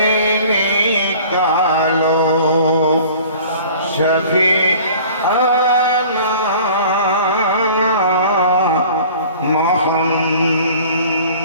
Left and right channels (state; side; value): inverted; both; correlation -0.47